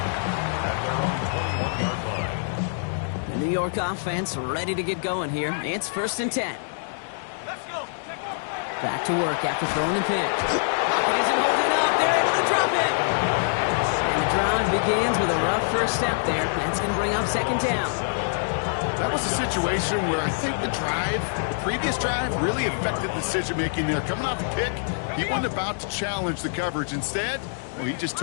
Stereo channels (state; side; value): silent; right; digital silence